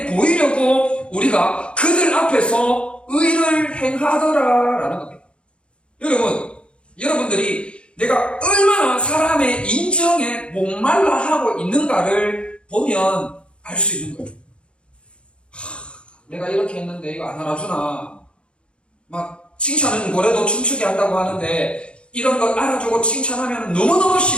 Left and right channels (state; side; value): late; right; 0.057 ms